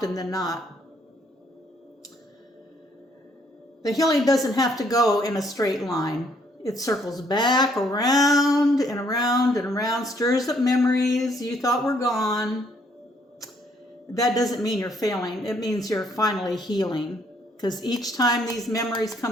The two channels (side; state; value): both; normal; correlation 0.68